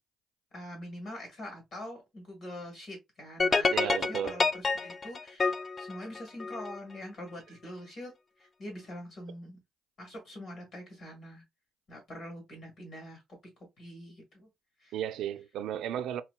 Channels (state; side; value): normal; both; correlation 0.80